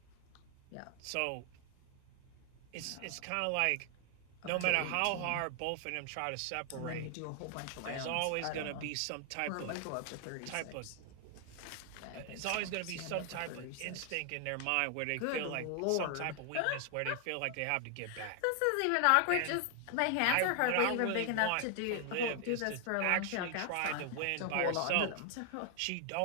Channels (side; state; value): both; different; correlation 0.00